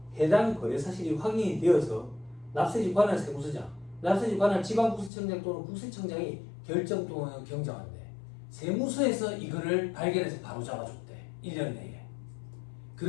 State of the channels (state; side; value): drops out; right; at 5.1 s